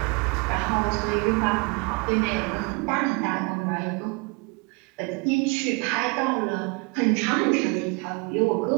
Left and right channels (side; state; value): left; quieter; 29.6 dB